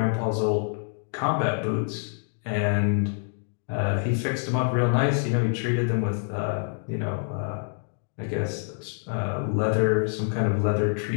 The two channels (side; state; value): right; silent; digital silence